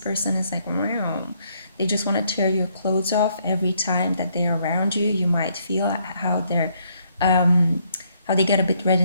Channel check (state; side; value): inverted; both; correlation -0.70